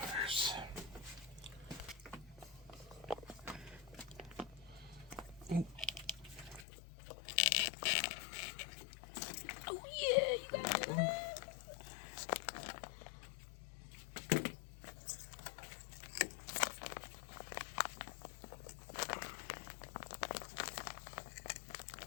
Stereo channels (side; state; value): right; drops out; at 6.7 s